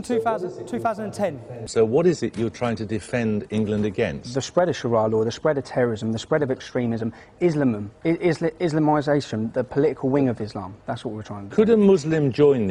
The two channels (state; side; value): identical; both; correlation 1.00